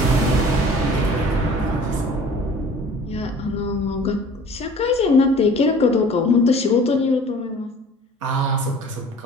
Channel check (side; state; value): both; normal; correlation 0.47